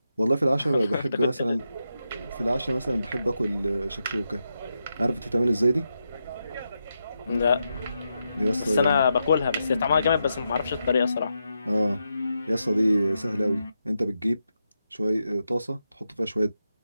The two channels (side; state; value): both; inverted; correlation -0.86